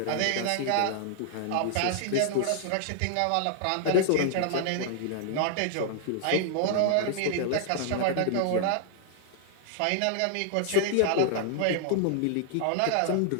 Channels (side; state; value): both; different; correlation -0.01